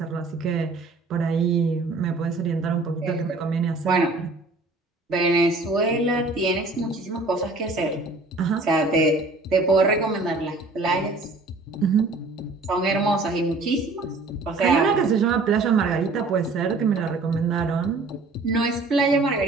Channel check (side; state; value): left; quieter; 3.4 dB